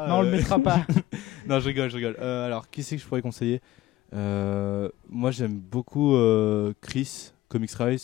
Non, on le mettra pas. Non, je rigole. Alors, qui c'est que je pourrais conseiller? Moi j'aime beaucoup Chris, Comics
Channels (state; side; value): quieter; right; 16.1 dB